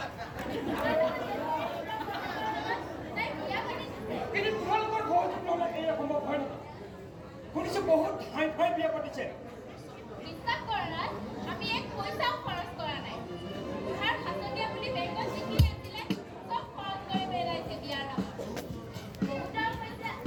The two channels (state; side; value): identical; both; correlation 1.00